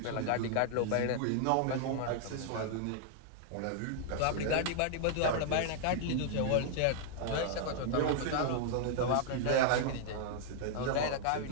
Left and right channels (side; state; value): both; different; correlation 0.00